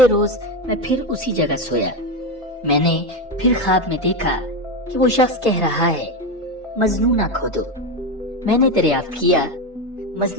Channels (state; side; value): normal; both; correlation 0.13